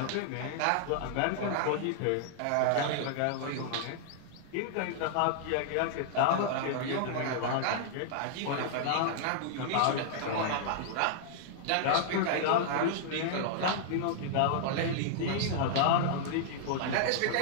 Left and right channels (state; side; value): different; both; correlation -0.01